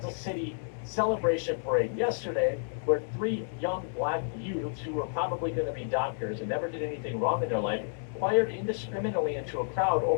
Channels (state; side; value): silent; right; digital silence